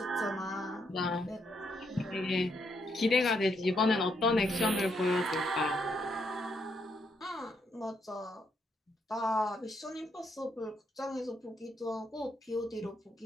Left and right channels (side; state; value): both; normal; correlation 0.76